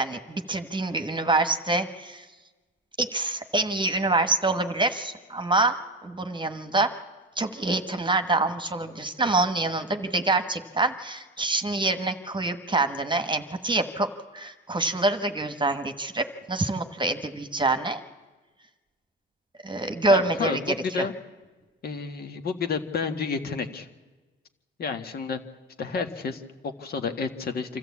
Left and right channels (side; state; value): both; normal; correlation 0.21